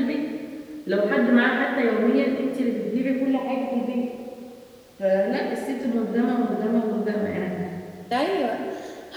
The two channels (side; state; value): both; identical; correlation 1.00